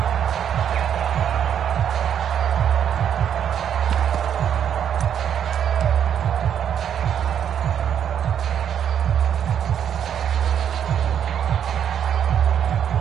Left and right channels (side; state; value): left; quieter; 8.9 dB